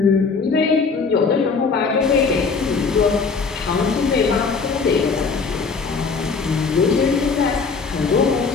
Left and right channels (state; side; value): quieter; right; 4.9 dB